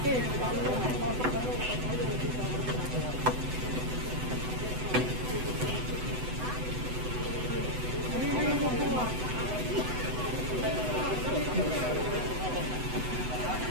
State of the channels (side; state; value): left; late; 7.9 ms